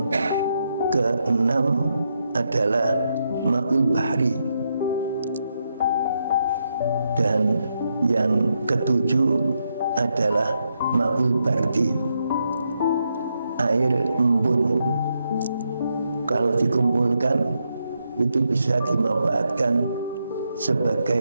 ke-6 adalah ma'ul bahri. Dan yang ke-7 adalah ma'ul bardi, air embun. Kalau dikumpulkan itu bisa dimanfaatkan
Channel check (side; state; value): both; inverted; correlation -0.81